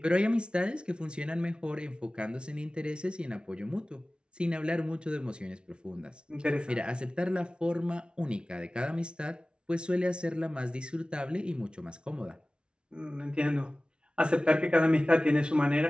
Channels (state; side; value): late; left; 0.057 ms